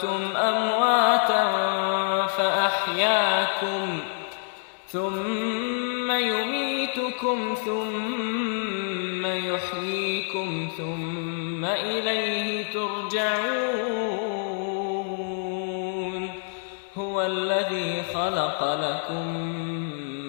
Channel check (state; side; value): silent; right; digital silence